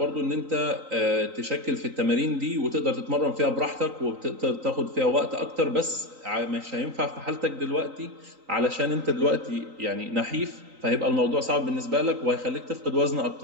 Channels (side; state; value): left; late; 3.9 ms